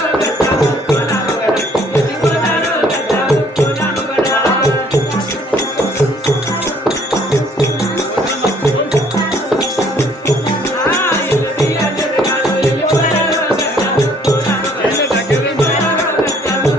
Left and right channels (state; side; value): normal; both; correlation 0.61